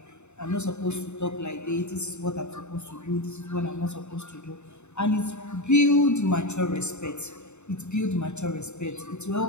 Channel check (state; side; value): late; right; 0.82 ms